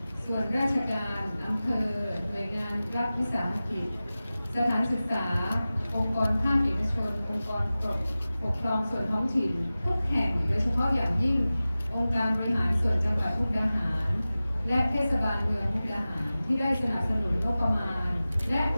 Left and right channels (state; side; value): inverted; both; correlation -0.96